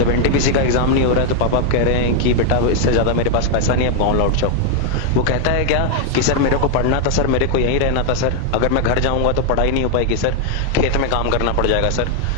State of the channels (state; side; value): different; both; correlation 0.00